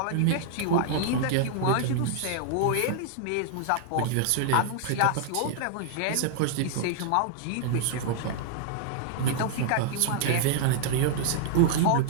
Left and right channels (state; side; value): different; both; correlation -0.01